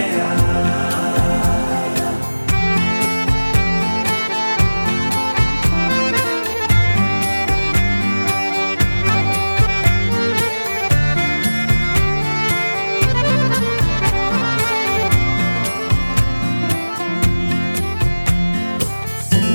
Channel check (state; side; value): inverted; both; correlation -1.00